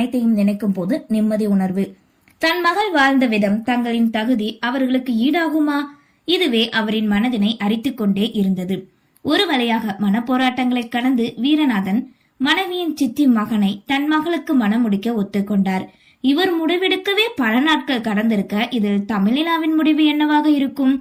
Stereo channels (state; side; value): identical; both; correlation 1.00